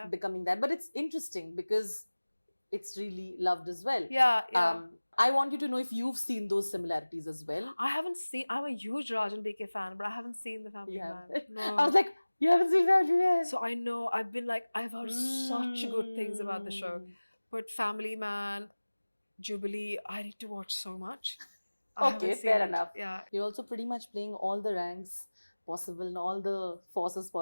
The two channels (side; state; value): both; inverted; correlation -1.00